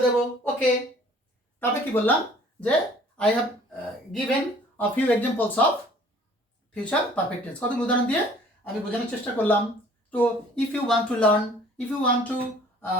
দেবো। ওকে, তবে কি বললাম যে I have given a few examples of future perfect tense, কতগুলো উদাহরণ দিয়ে আমি বোঝানোর চেষ্টা করলাম। তো if you want to learn, if you want to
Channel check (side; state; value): both; normal; correlation 0.53